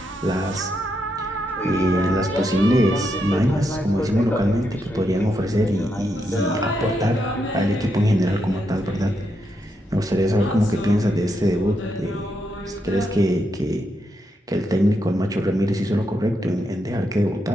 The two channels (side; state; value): both; normal; correlation 0.81